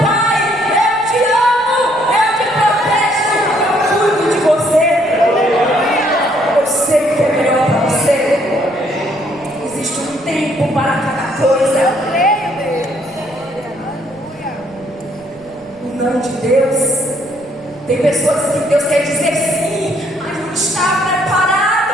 pai, eu te amo, eu te protejo, eu cuido de você. Eu sei o que é melhor para você. Existe um tempo para cada coisa. O não de Deus. Tem pessoas que Deus quer dizer sim, mas não está preparado.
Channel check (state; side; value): noise; right; rumble, 26 dB below the sound